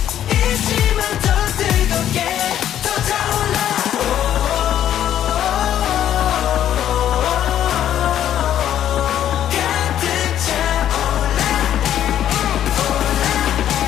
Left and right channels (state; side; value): quieter; right; 10.9 dB